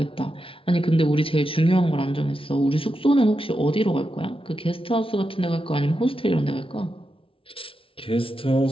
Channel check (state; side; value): late; right; 0.26 ms